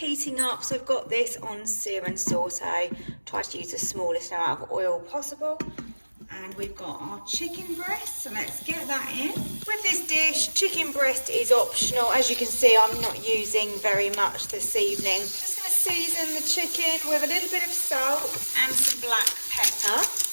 up. So I've got this on sear and saute. Try to use the smallest amount of oil possible. And we've got our chicken breast, so let's get that in. With this dish, chicken breast is optional. As you can see, I'm not using very much this evening. Just going to season the chicken with a little bit of salt and some black pepper.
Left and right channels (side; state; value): both; inverted; correlation -1.00